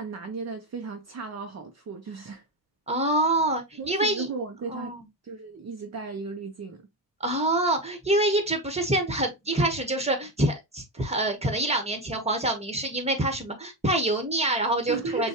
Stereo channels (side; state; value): both; normal; correlation 0.13